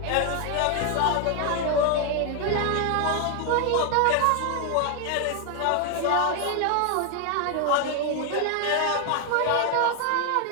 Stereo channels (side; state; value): both; different; correlation 0.01